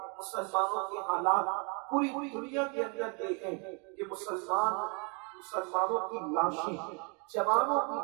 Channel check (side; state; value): left; quieter; 34.6 dB